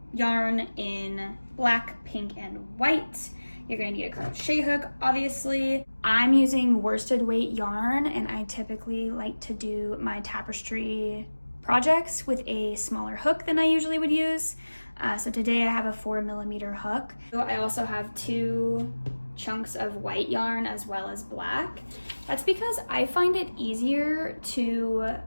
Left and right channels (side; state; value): both; inverted; correlation -1.00